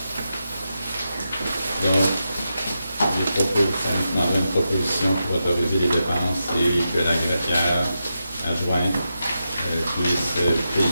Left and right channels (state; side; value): inverted; both; correlation -0.88